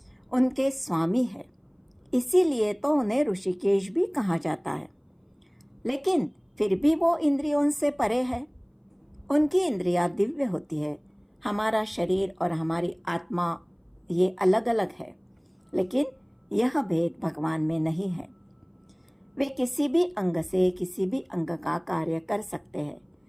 उनके स्वामी है। इसीलिए तो उन्हें ऋषिकेश भी कहा जाता है। लेकिन फिर भी वो इंद्रियों से परे है। उनकी इंद्रियां दिव्य होती है। हमारा शरीर और हमारी आत्मा ये अलग अलग है, लेकिन यह भेद भगवान में नहीं है। वे किसी भी अंग से किसी भी अंग का कार्य कर सकते हैं।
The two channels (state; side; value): identical; both; correlation 1.00